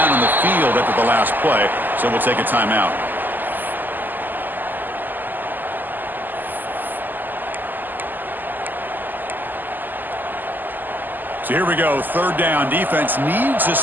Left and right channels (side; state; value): left; late; 0.088 ms